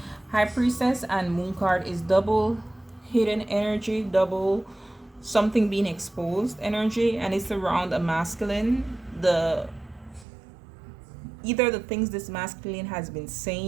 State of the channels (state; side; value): drops out; left; at 10.2 s